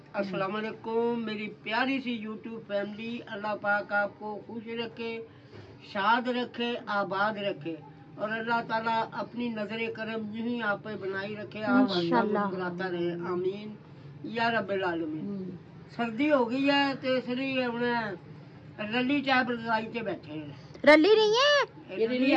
अस्सलाम वालेकुम मेरी प्यारी सी यूट्यूब फैमिली। अल्लाह पाक आपको खुश रखे, शाद रखे, आबाद रखे, और अल्लाह ताला अपनी नजर करम यूं ही आप पे बनाई रखे, आप मुस्कुराता रहे, आमीन या रब्बिल आलमीन। सर्दी हो गई है तो इसलिए हमने रली चाय रजाई से बैठे हैं। रली नहीं है ये रली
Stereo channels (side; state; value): both; identical; correlation 1.00